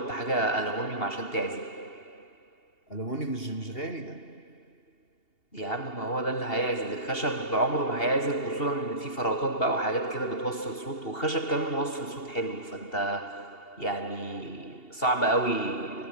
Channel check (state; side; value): late; right; 2.8 ms